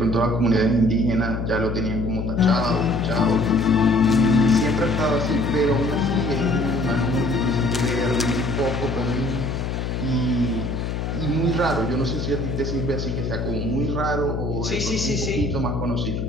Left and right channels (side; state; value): left; noise; hum, 3 dB below the sound